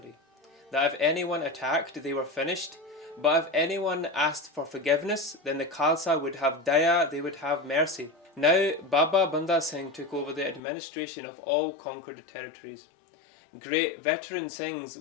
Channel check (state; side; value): drops out; right; at 10.6 s